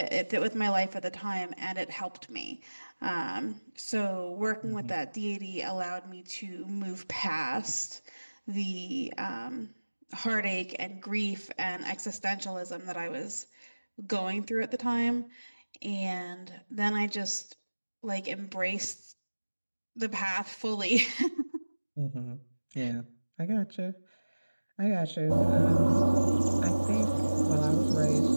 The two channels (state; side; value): inverted; both; correlation -1.00